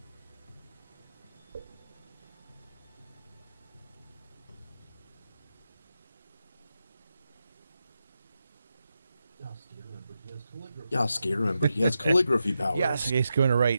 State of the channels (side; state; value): both; inverted; correlation -0.88